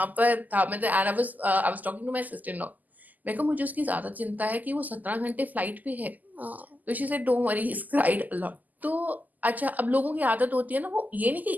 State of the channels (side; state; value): left; late; 0.082 ms